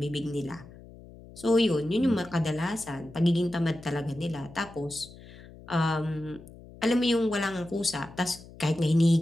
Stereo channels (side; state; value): left; noise; hum, 19 dB below the sound